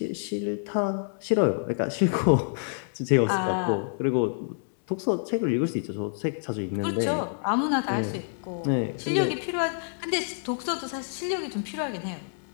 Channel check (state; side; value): silent; right; digital silence